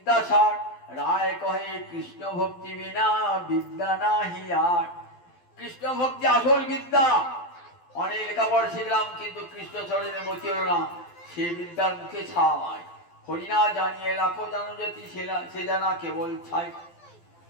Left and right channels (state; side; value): late; right; 12 ms